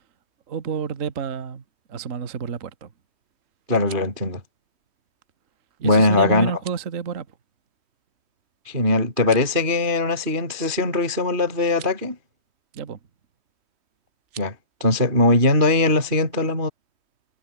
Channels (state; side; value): late; left; 3.1 ms